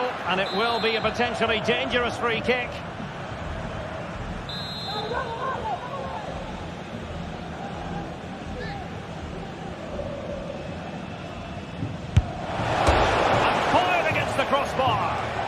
and it will be a potentially dangerous free kick. And fired against the crossbar.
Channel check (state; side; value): identical; both; correlation 1.00